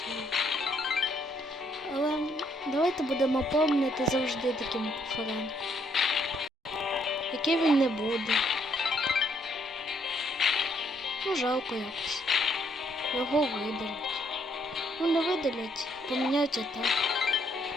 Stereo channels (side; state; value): both; normal; correlation 0.70